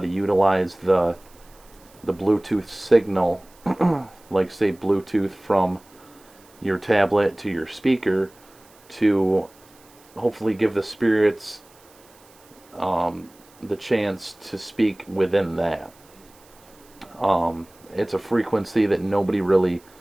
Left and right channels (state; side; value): noise; right; hiss, 28 dB below the sound